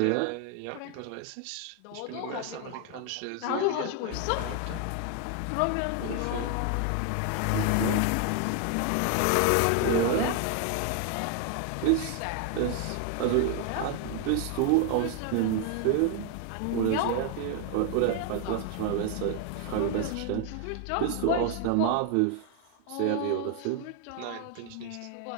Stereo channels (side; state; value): both; different; correlation 0.00